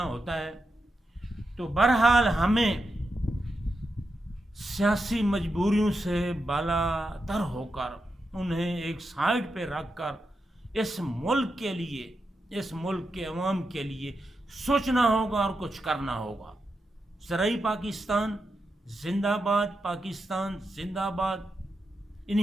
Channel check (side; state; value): both; normal; correlation 0.87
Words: ہوتا ہے۔ تو بہرحال ہمیں سیاسی مجبوریوں سے بالا تر ہو کر انہیں ایک سائڈ پہ رکھ کر اس ملک کے لیے، اس ملک کے عوام کے لیے سوچنا ہوگا اور کچھ کرنا ہوگا۔ زرعی پاکستان زندہ باد، پاکستان زندہ باد۔